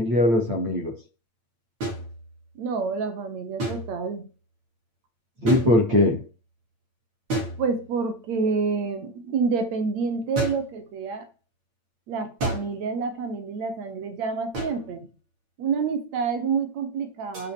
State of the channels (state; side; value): late; left; 8.8 ms